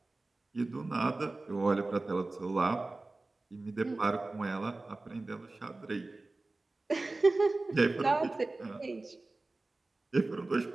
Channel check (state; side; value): quieter; left; 3.2 dB